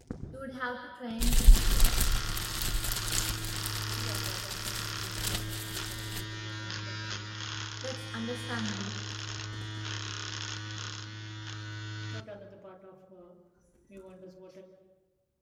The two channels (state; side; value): identical; both; correlation 1.00